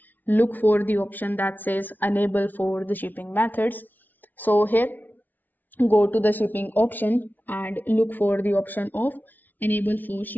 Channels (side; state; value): right; late; 0.083 ms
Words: look for the option that says enable for the shipping methods. So here, go to the shipping option and look for the option of enable for